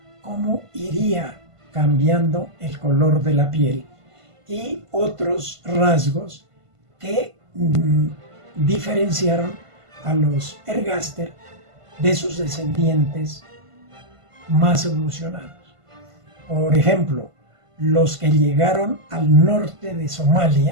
cómo iría cambiando el color de la piel y otros rasgos que diferenciaron a los ergaster de sus descendientes más evolucionados. Por ejemplo, los que llegaron al norte de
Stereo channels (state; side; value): late; left; 1.5 ms